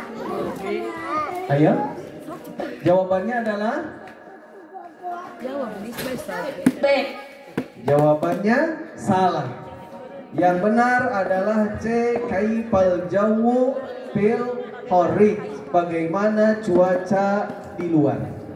Ayo. Jawabannya adalah B. Jawabannya salah. Yang benar adalah C. Kaifal jawu fil kharij. Bagaimana cuaca di luar.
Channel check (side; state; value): both; identical; correlation 1.00